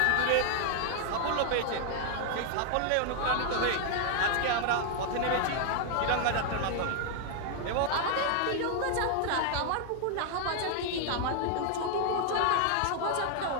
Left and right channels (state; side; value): different; both; correlation 0.00